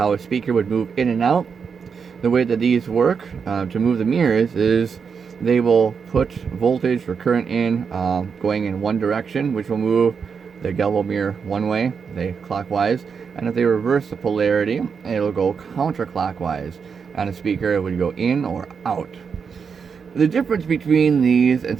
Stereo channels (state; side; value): quieter; left; 6.1 dB